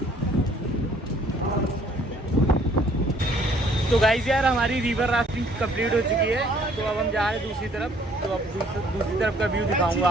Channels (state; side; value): normal; both; correlation 0.60